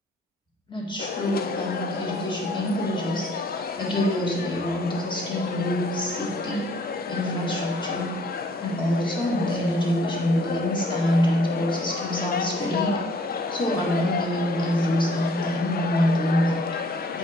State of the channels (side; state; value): both; normal; correlation 0.61